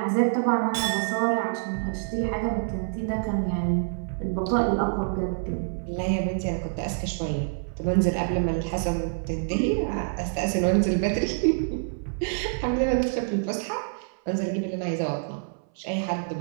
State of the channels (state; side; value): silent; left; 59 dB below the other